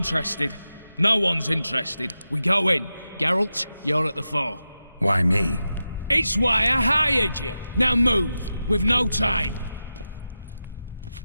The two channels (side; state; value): both; inverted; correlation -0.91